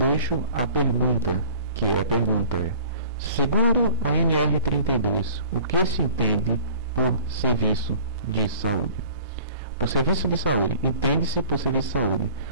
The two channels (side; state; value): both; inverted; correlation -0.48